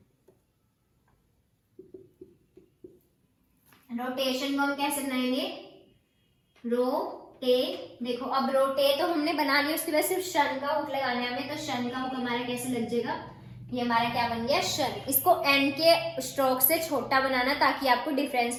रोटेशन को हम कैसे बनाएंगे रोटे, देखो अब रोटे तो हमने बना लिया, उसके बाद सिर्फ शन का हुक लगाना है हमें, तो शन का हुक हमारा कैसे लग जाएगा, ये हमारा क्या बन गया शन। इसको एन के स्ट्रोक से छोटा बनाना ताकि आपको डिफरेंस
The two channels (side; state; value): both; identical; correlation 1.00